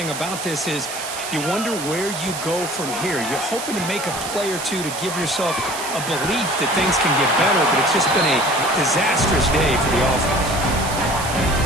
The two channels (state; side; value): noise; right; hiss, 7 dB below the sound